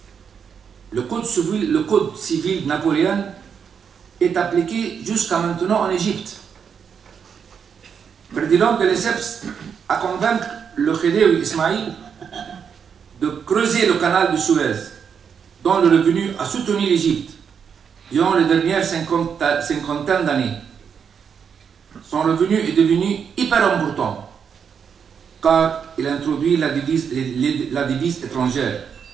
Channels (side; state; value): left; quieter; 7.0 dB